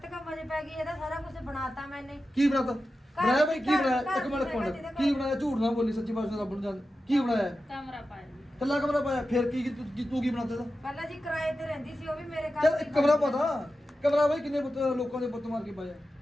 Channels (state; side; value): normal; both; correlation 0.92